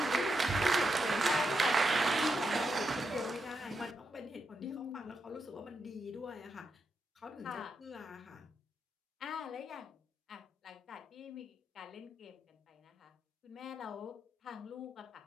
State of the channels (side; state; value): both; normal; correlation 0.84